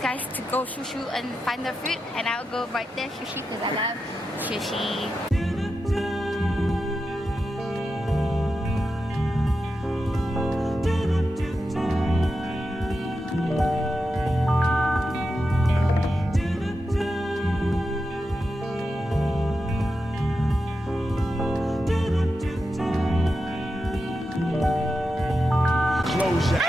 guys to go sushi and find their food, and I'll go right there sushi because I love sushi. Close your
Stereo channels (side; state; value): both; normal; correlation 0.89